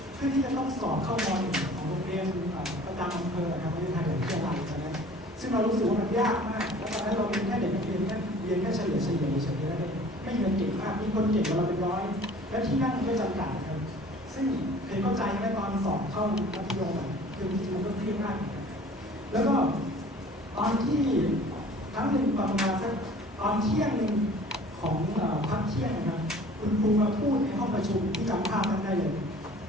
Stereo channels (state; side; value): normal; both; correlation 0.48